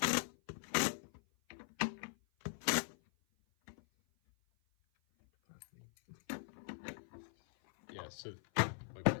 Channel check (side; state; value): right; silent; 51 dB below the other